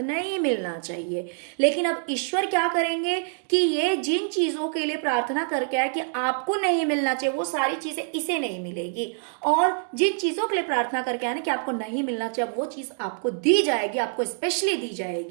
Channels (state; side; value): silent; left; 61 dB below the other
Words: नहीं मिलना चाहिए, लेकिन अब ईश्वर क्या करेंगे कि ये जिन चीजों के लिए प्रार्थना करके आए कि आपको नहीं मिलना चाहिए, वो सारी चीजें इसे नहीं मिलेगी, और जिन चीजों के लिए प्रार्थना करके आए ना कि आपको नहीं मिलना चाहिए, वो चीज आपको दी जाएगी, आपको स्पेशली दी